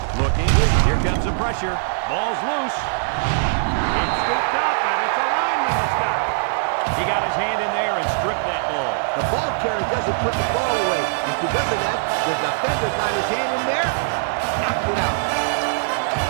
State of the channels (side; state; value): left; silent; digital silence